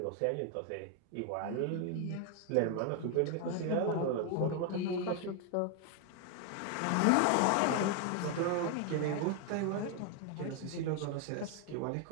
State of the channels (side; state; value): both; different; correlation 0.01